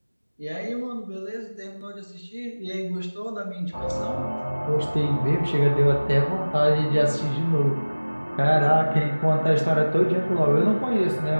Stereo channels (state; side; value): inverted; both; correlation -1.00